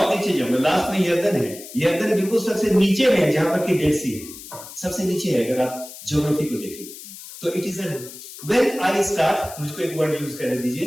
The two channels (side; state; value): left; noise; hiss, 14 dB below the sound